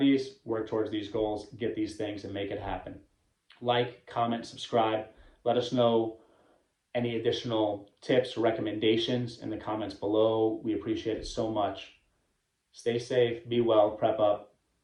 work towards these goals, get these things and make it happen. Like, comment, subscribe. Let us know any additional tips or recommendations in the comments below. We appreciate it so much. Stay safe, be well, prep up.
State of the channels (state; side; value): identical; both; correlation 1.00